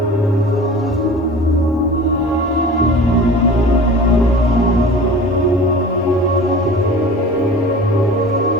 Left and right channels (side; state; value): both; normal; correlation 0.40